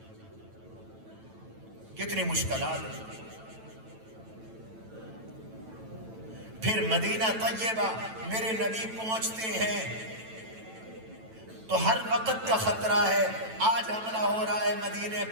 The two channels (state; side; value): late; left; 9.1 ms